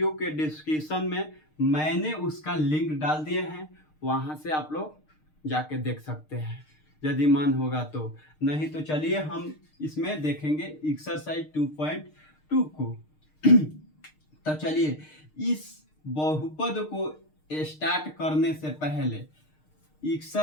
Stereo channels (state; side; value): late; right; 6.5 ms